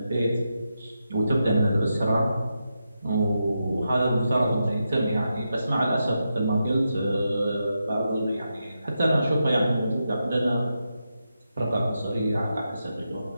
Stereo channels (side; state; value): both; inverted; correlation -0.87